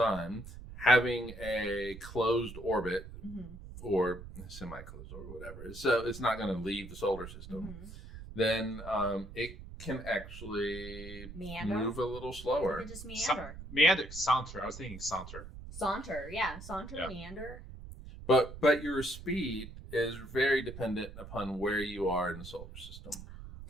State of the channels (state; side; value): noise; right; rumble, 13 dB below the sound